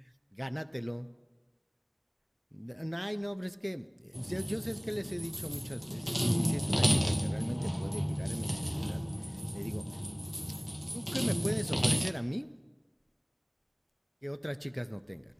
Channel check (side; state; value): both; identical; correlation 1.00